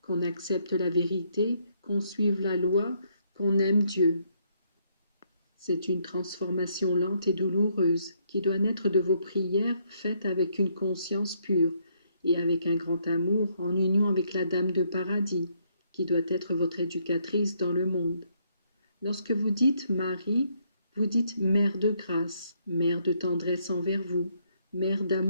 qu'on accepte la vérité, qu'on suive la loi, qu'on aime Dieu. C'est une transformation lente et douloureuse qui doit naître de vos prières faites avec une conscience pure et avec un grand amour en union avec la Dame de Paradis, qui doit être votre éducatrice dans le monde. Lorsque vous dites Marie, vous dites Mère de grâce, Mère de tendresse envers vous, Mère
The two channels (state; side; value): inverted; both; correlation -0.72